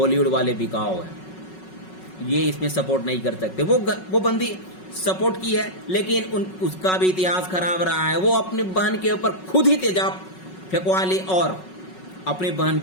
वाले बिकाऊ है, ये इसमें सपोर्ट नहीं कर सकते। वो बंदी सपोर्ट की है, लेकिन उसका भी इतिहास खराब रहा है। वो अपनी बहन के ऊपर खुद ही तेजाब फेंकवा ली और अपनी बहन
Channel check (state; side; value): late; right; 5.4 ms